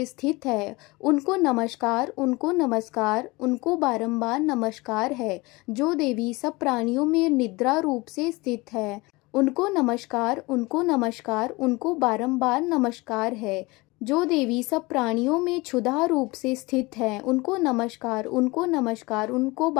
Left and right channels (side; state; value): right; quieter; 23.4 dB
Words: स्थित है, उनको नमस्कार, उनको नमस्कार, उनको बारंबार नमस्कार है। जो देवी सब प्राणियों में निद्रा रूप से स्थित है, उनको नमस्कार, उनको नमस्कार, उनको बारंबार नमस्कार है। जो देवी सब प्राणियों में क्षुधा रूप से स्थित है, उनको नमस्कार, उनको नमस्कार, उनको